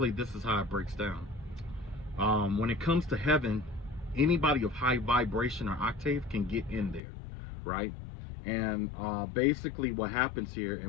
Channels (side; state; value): right; drops out; at 7.0 s